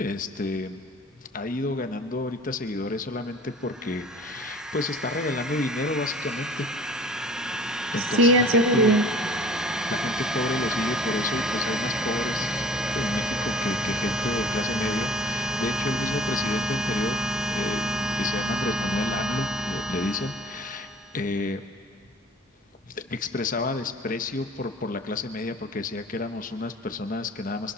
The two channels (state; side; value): normal; both; correlation 0.48